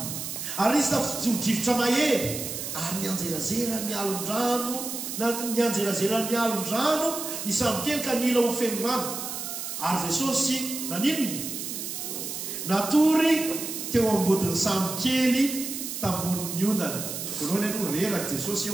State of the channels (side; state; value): right; noise; hiss, 6 dB below the sound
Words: ary nisy tafijodrivotra mahery ary nianjerazera ny alon-drano ny alon-drano ny samokely ka nila ho feno rano ary jesosy naninony natory teo ambodin'ny samokely tamboniny ondana voalohany aloha reraka jesosy